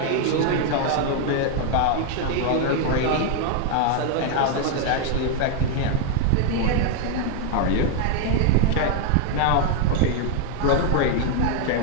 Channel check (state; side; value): different; both; correlation 0.00